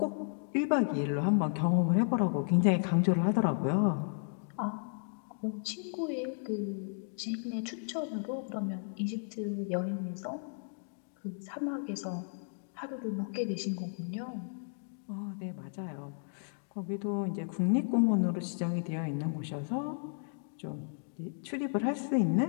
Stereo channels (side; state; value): right; silent; digital silence